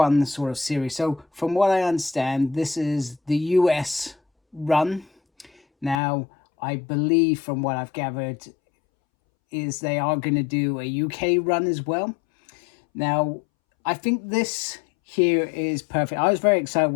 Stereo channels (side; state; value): right; drops out; at 6.0 s